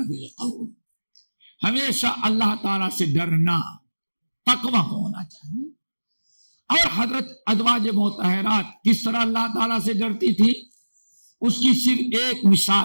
بالقول، ہمیشہ اللہ تعالیٰ سے ڈرنا، تقوی ہونا چاہیے. اور حضرت ازواج مطہرات کس طرح اللہ تعالیٰ سے ڈرتی تھی، اس کی صرف ایک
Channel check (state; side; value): inverted; both; correlation -1.00